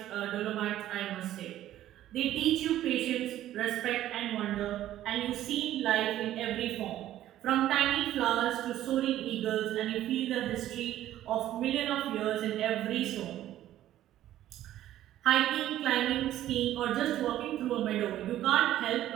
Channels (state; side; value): quieter; left; 13.0 dB